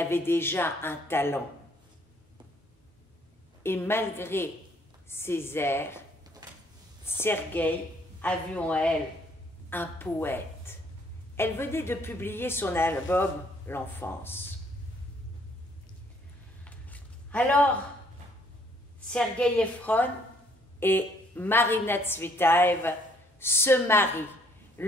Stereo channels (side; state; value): both; normal; correlation 0.64